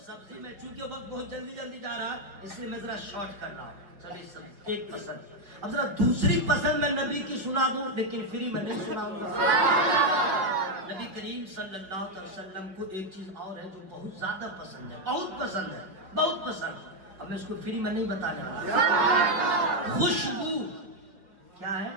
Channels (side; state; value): left; late; 5.3 ms